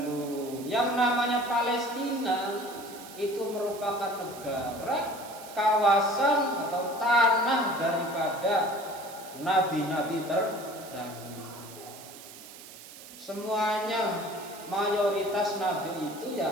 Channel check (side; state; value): right; noise; hiss, 16 dB below the sound